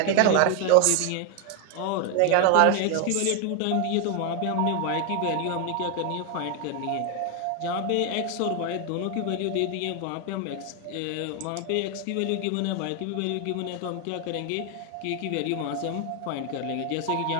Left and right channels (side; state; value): both; different; correlation 0.01